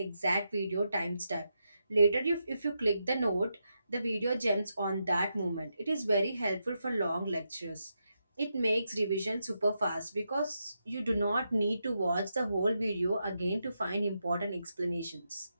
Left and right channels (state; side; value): inverted; both; correlation -0.84